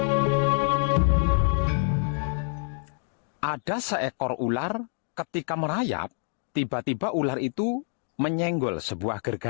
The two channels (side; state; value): right; silent; 60 dB below the other